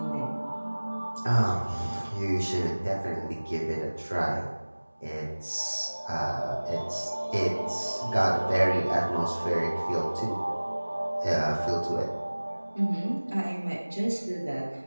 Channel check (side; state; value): both; inverted; correlation -1.00